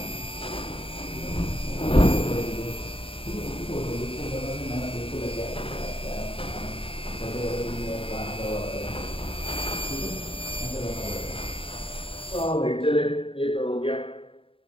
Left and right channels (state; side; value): late; right; 0.26 ms